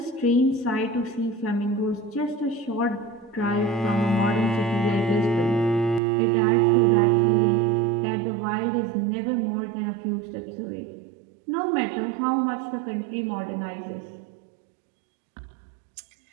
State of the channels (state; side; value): drops out; left; at 6.0 s